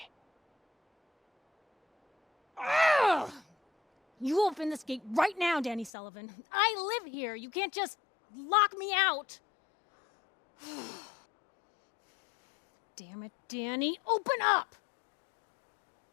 Ugh. You open this gate right now, Danny Sullivan. I live here. You can't just lock me out. Damn it, Danny. Open up!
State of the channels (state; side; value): drops out; right; at 5.9 s